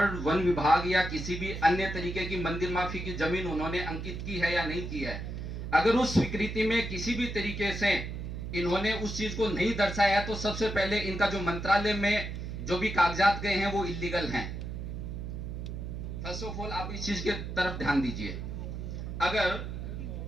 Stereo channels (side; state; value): right; noise; hum, 6 dB below the sound